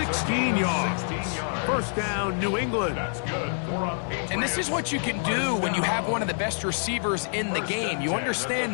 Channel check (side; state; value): right; silent; 60 dB below the other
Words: yards. First down, New England. That's good. And this is what you can do when you have one of the best receivers in the game. You